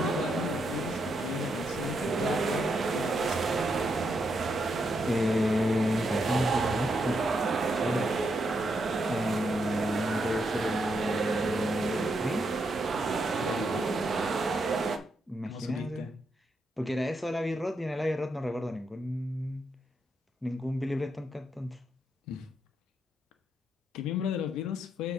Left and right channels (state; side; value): normal; both; correlation 0.80